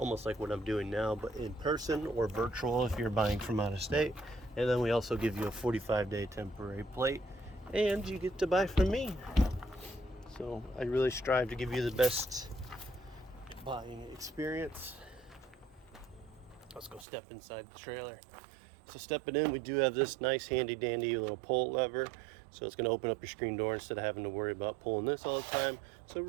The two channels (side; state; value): left; drops out; at 17.1 s